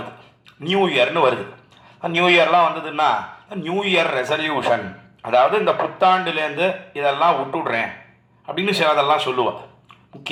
நியூ இயர்னு வருது. நியூ இயர்லாம் வந்ததுன்னா நியூ இயர் ரெசல்யூஷன், அதாவது இந்த புத்தாண்டுலேருந்து இதெல்லாம் விட்டுடுறேன் அப்படின்னு சிலதெல்லாம் சொல்லுவாள்.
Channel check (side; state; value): both; identical; correlation 1.00